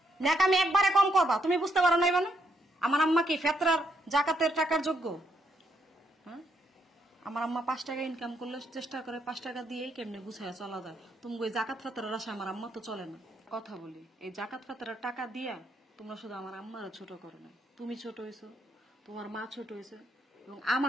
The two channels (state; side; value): normal; both; correlation 0.76